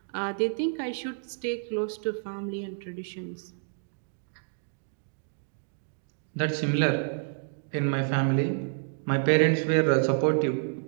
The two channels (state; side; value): silent; left; digital silence